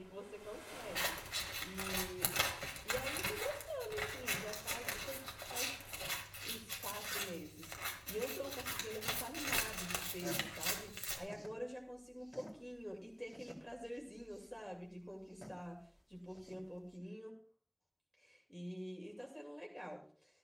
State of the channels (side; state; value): both; identical; correlation 1.00